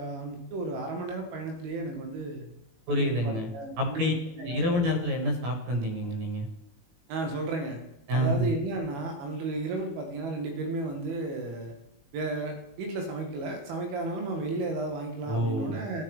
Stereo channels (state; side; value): late; left; 18 ms